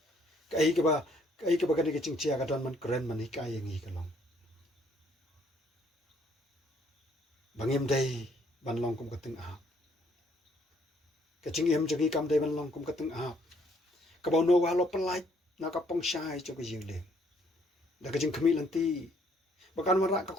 kai ki ba kane ka ching chia ka don man kren man hi kai ngi ka long bangim dai ban long kum ka teng a ka ching em jagi kam dai ban long kum ka teng a ka ba no wa lo palai na ka pong shai cho ka jing le da ka ching khmi lan ti ba kan ma ra ka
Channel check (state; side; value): normal; both; correlation 0.66